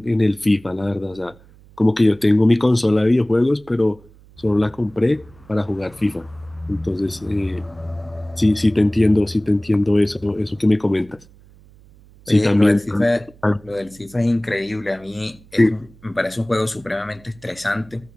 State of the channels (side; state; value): right; noise; hum, 26 dB below the sound